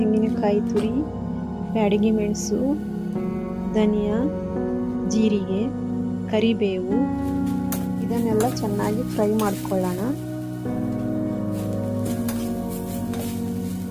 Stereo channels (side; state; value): both; identical; correlation 1.00